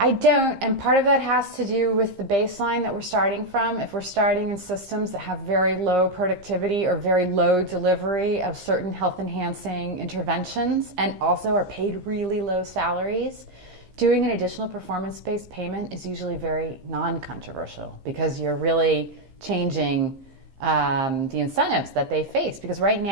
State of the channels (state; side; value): late; left; 15 ms